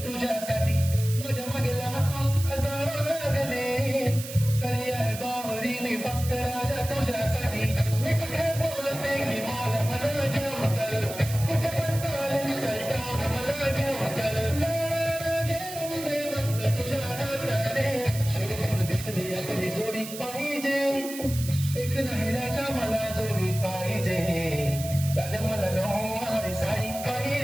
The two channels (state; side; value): noise; right; hiss, 11 dB below the sound